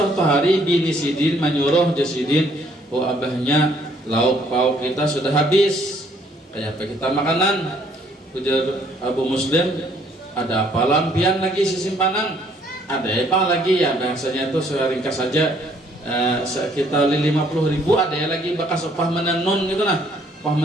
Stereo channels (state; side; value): normal; both; correlation 0.64